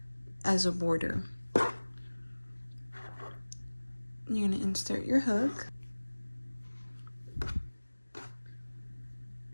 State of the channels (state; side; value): inverted; both; correlation -1.00